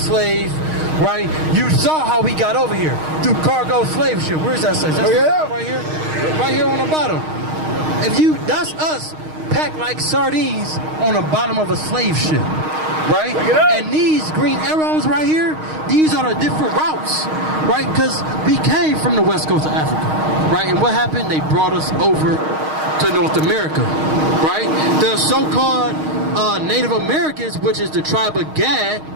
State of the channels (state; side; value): late; left; 6.4 ms